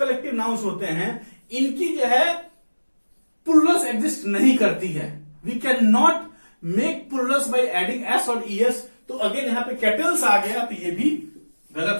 नाउन्स होते हैं इनकी जो है प्लूरल्स एग्जिस्ट नहीं करती है। We can not make plurals by adding S और ईएस, तो अगेन यहाँ पे कैटल्स आ गया, तो ये भी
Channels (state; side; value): inverted; both; correlation -1.00